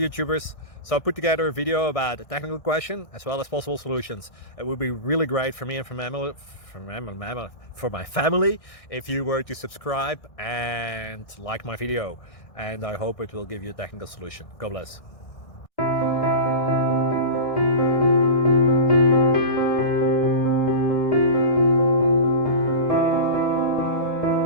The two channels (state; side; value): late; right; 1.6 ms